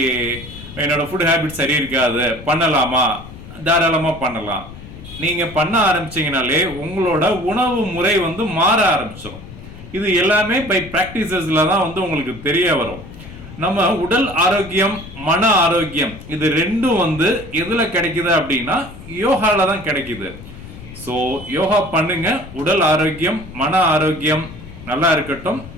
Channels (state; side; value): noise; left; rumble, 15 dB below the sound